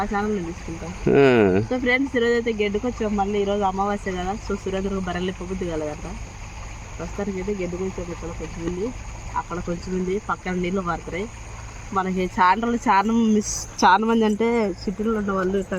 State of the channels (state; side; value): identical; both; correlation 1.00